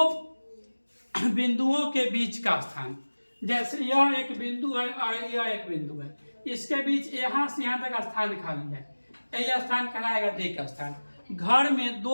बिंदुओं के बीच का स्थान। जैसे यह एक बिंदु है और यह एक बिंदु है, इसके बीच यहाँ से यहाँ तक स्थान खाली है, यह स्थान कहलाएगा दिक् स्थान। घर में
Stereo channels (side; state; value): both; inverted; correlation -1.00